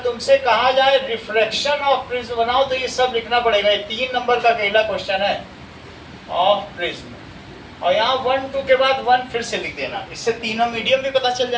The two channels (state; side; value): identical; both; correlation 1.00